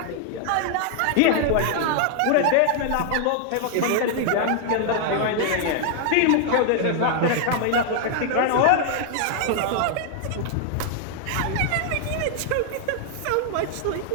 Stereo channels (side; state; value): both; different; correlation 0.00